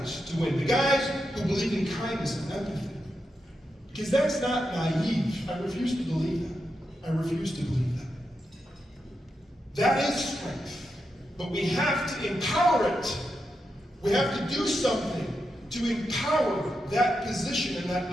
to win, the guys who believe in kindness and empathy. Because that's not naive. I refuse to believe that. I refuse to believe that. That is strength. But we have to empower it. We have to do something to empower that position and that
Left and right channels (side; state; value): both; normal; correlation 0.86